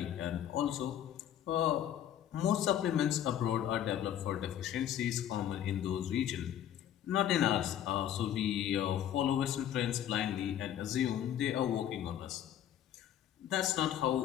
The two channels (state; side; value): quieter; right; 10.7 dB